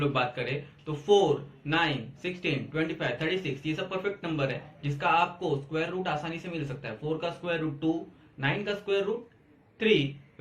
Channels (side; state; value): both; identical; correlation 1.00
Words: बात करें तो 4, 9, 16, 25, 36 ये सब परफेक्ट नंबर है जिसका आपको स्क्वायर रूट आसानी से मिल सकता है। 4 का स्क्वायर रूट 2, 9 का स्क्वायर रूट 3,